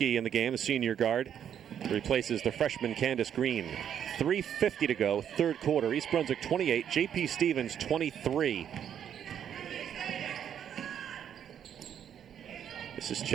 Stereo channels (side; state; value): left; quieter; 9.1 dB